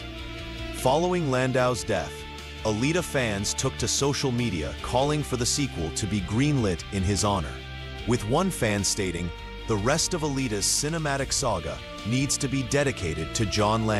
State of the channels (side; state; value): both; identical; correlation 1.00